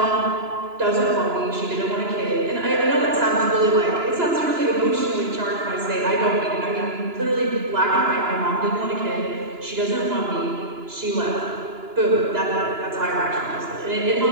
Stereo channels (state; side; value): late; left; 2.9 ms